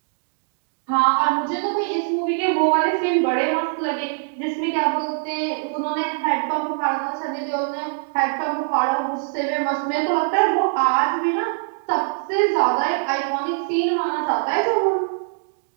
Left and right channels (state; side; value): silent; left; digital silence